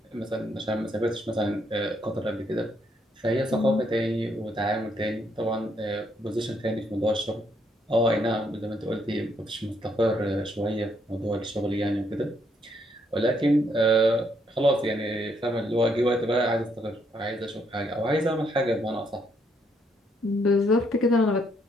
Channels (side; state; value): both; normal; correlation 0.72